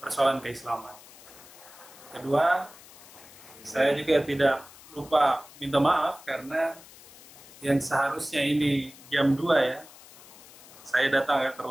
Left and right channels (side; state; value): left; noise; hiss, 20 dB below the sound